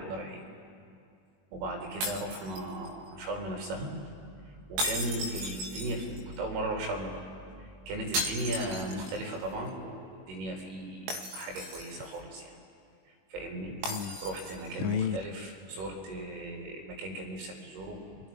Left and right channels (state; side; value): late; left; 21 ms